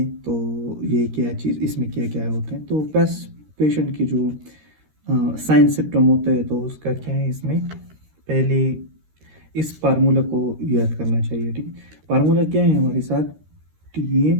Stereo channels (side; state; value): left; late; 13 ms